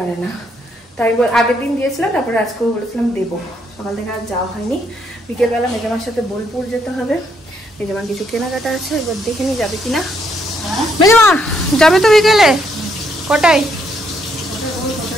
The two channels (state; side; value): normal; both; correlation 0.73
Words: না। তাই আগের দিন দিয়েছিলাম, তারপরে আজকেও বলেছিলাম দেবো। সকাল থেকে আর যাওয়া হয়নি। বিকেলবেলা মেজামার সাথে বোলপুর যেতে হবে, মেজামার কিছু কেনাকাটা আছে, এবার দেখে নি যাবে কিনা। মেজামা যাবে তো বিকেলে? কটায়?